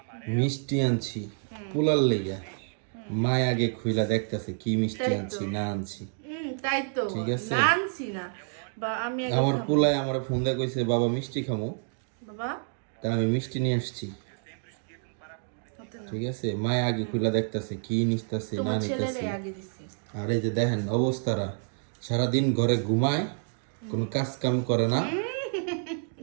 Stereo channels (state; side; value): silent; left; 59 dB below the other